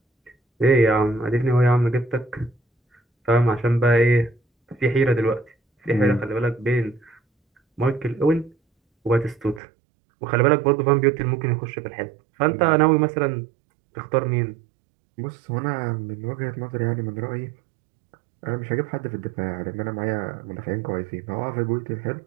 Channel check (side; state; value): left; drops out; at 9.6 s